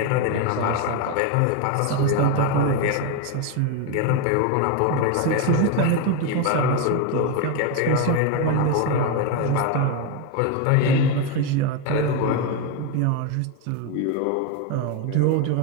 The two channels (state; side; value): different; both; correlation 0.02